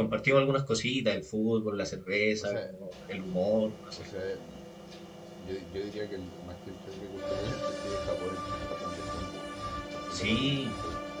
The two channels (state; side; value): identical; both; correlation 1.00